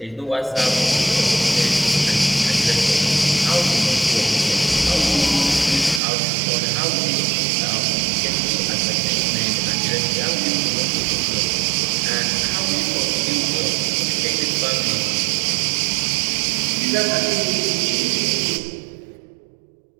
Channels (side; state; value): left; drops out; at 6.0 s